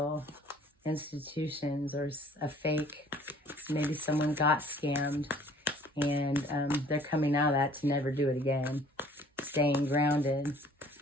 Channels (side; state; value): both; normal; correlation 0.54